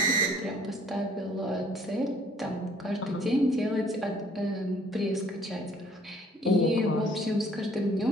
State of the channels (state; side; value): normal; both; correlation 0.58